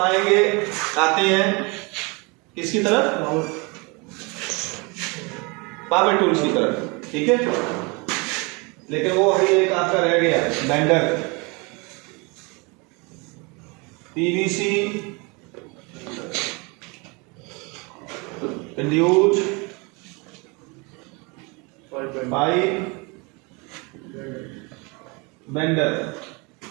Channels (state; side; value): quieter; left; 28.9 dB